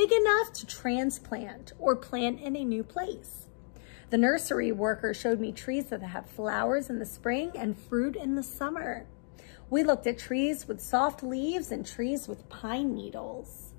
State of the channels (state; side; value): silent; right; 57 dB below the other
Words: enough to transplant or plant in a new place. The nursery worker showed me trees that have flowers in the spring and fruit in the summer. We looked at trees with soft leaves and trees with pine needles.